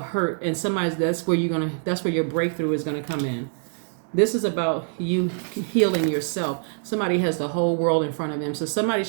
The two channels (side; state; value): left; silent; 58 dB below the other